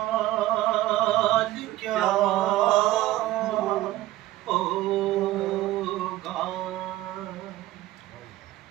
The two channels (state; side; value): quieter; left; 15.8 dB